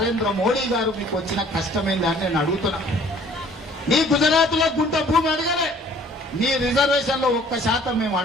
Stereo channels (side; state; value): both; normal; correlation 0.55